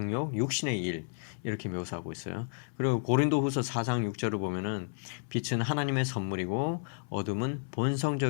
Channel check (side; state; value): right; silent; 57 dB below the other